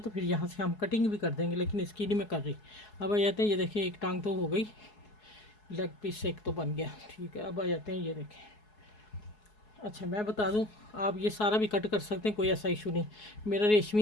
तो फिर यहाँ से हम कटिंग भी कर देंगे, लेकिन इसकी नहीं मैं कर रही। अब आ जाते हैं, ये देखें एक टांग तो हो गई, लेग पीस एक तो बन गया, ठीक है। अब आ जाते हैं, ये देखें। अच्छा मैं बता दूं, आप ये सारा भी कट कर सकते हैं, कोई ऐसा इशू नहीं। मेरा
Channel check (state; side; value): late; right; 4.7 ms